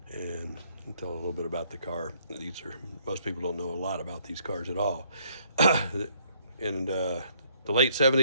And I'll tell a little bit about the car. Most people don't know a lot about these cars at all. In the late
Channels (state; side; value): inverted; both; correlation -0.66